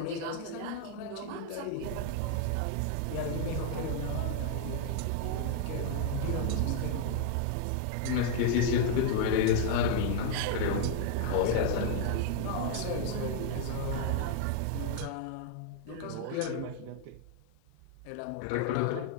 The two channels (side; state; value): both; different; correlation 0.00